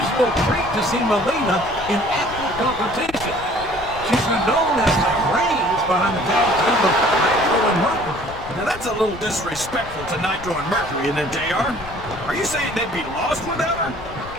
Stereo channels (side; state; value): left; noise; rumble, 15 dB below the sound